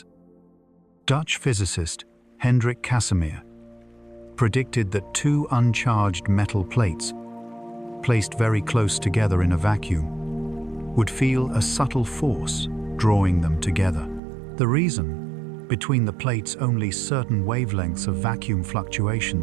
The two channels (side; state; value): left; drops out; at 14.2 s